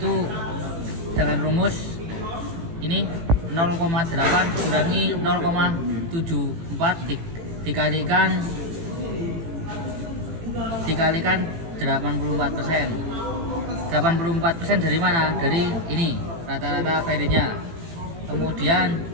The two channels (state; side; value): late; left; 18 ms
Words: dengan rumus ini 0,8 dikurangi 0,74 dikalikan 84%. 84% dari mana? Dari ini rata-rata feritnya. Kemudian